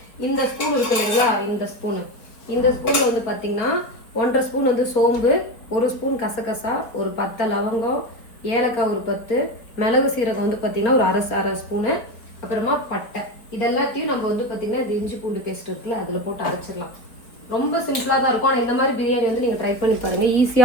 இந்த ஸ்பூன் இருக்கு இல்லைங்களா, இந்த ஸ்பூன்ல வந்து பாத்தீங்கன்னா 1.5 ஸ்பூன் வந்து சோம்பு, 1 ஸ்பூன் கசகசா, ஒரு 10 லவங்கம், ஏலக்காய் ஒரு 10, மிளகு சீரகம் வந்து பாத்தீங்கன்னா ஒரு அரை ஸ்பூனு, அப்புறமா பட்டை. இதெல்லாத்தையும் நம்ம வந்து பார்த்தீங்கன்னா இந்த இஞ்சி பூண்டு பேஸ்ட் இருக்குல்ல, அதில் போட்டு அரைச்சிடலாம். ரொம்ப சிம்பிளாக தான் இருக்கும். ஆனால் இந்த மாதிரி பிரியாணி வந்து நீங்கள் ட்ரை பண்ணி பாருங்கள்,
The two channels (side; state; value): right; late; 4.1 ms